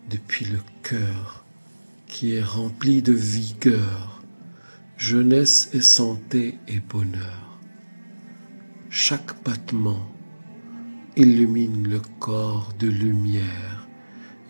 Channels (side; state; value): both; inverted; correlation -1.00